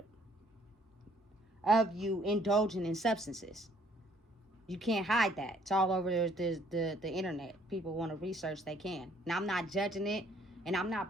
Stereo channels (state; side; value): normal; both; correlation 0.62